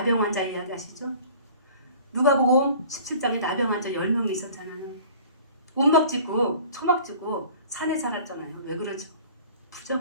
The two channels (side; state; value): both; inverted; correlation -0.47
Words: 환자 이야기 아시죠? 누가복음 17장에 나병 환자 10명이 있었잖아요. 운막 짓고 초막 짓고 산에 살았잖아요. 왜 그러지?